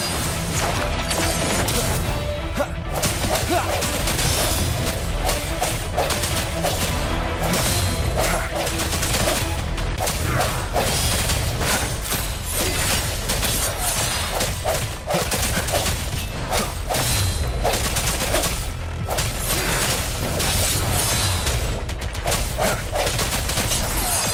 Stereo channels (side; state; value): both; identical; correlation 1.00